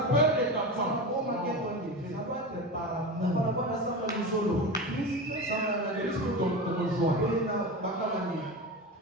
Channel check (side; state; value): both; normal; correlation 0.24